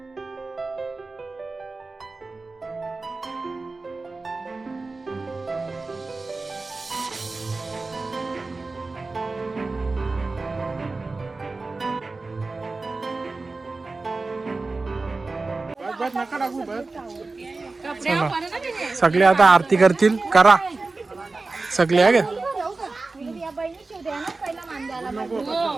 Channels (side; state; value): left; quieter; 3.6 dB